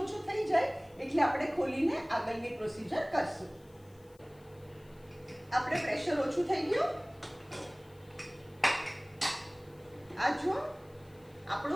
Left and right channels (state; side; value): noise; left; hiss, 29 dB below the sound